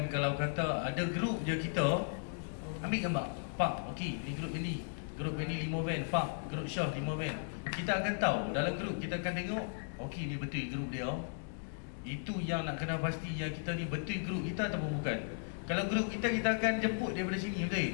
Kalau kata ada grup je kita, ambil gambar, pak, okey, ni grup ini 5 van, pak, grup Syah 5 van. Kita akan tahu dalam grup, kita akan tengok, okey ni betul grup dia. Itu yang nak kena pasti, yang kita ni betul grup kita ataupun bukan. Kalau grup kita akan jemput daripada sini, betul?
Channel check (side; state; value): right; silent; digital silence